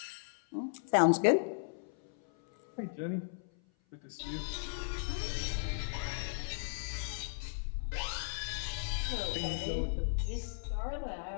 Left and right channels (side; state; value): right; silent; 54 dB below the other